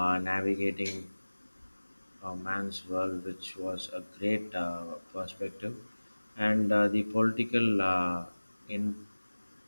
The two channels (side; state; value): both; inverted; correlation -1.00